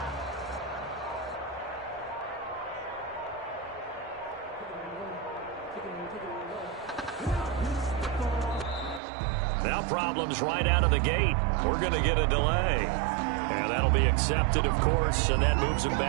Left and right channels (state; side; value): drops out; left; at 9.0 s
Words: Now problems right out of the gate. We're going to get a delay. And that'll be accepted, of course, and that moves him